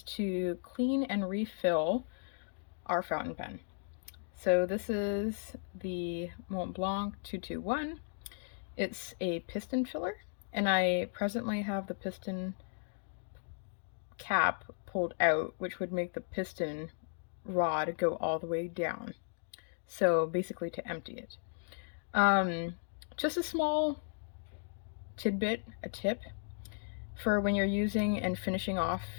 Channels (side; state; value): right; silent; digital silence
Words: to clean and refill our fountain pen. So this is the Montblanc 221. It's a piston filler, and I presently have the piston cap pulled out, which would make the piston rod go all the way down. So basically to empty it. Just a small a tip for when you're using and finishing off